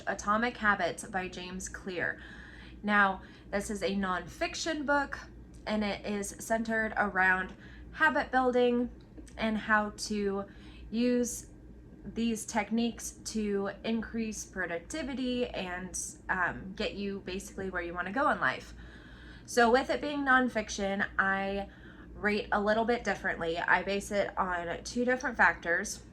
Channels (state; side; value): identical; both; correlation 1.00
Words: Atomic Habits by James Clear. Now, this is a nonfiction book, and it is centered around habit building and how to use these techniques to increase productivity and get you basically where you want to go in life. So with it being nonfiction, I rate a little bit differently. I base it on 2 different factors.